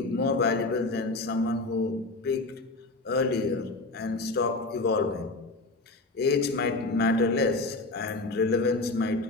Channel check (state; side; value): quieter; right; 3.2 dB